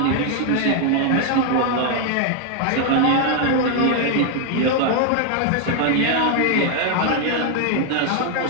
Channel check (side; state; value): both; different; correlation 0.00